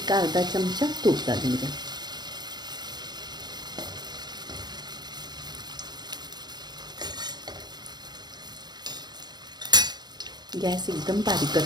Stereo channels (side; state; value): left; late; 0.20 ms